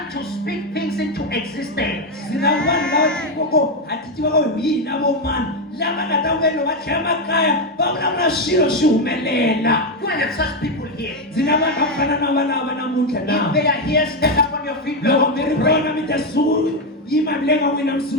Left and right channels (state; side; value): normal; both; correlation 0.07